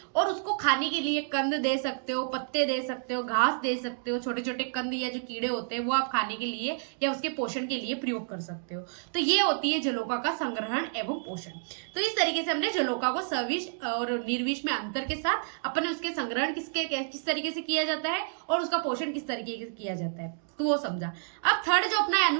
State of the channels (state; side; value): silent; left; digital silence